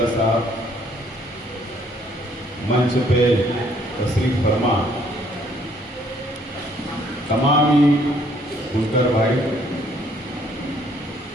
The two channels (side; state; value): both; normal; correlation 0.64